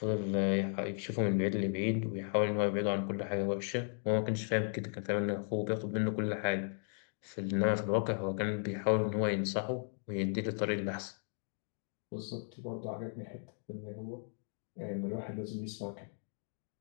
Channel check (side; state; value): right; silent; 54 dB below the other